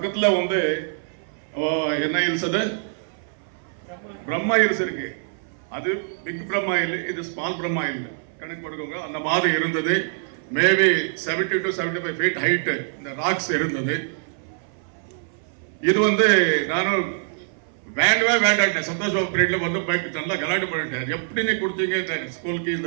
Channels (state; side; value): silent; left; 58 dB below the other